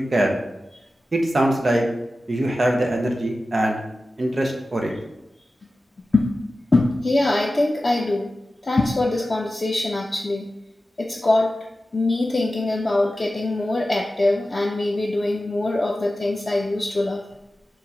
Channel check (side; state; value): both; normal; correlation 0.94